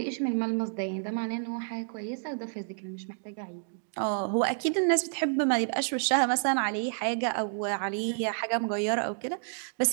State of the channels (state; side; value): silent; left; digital silence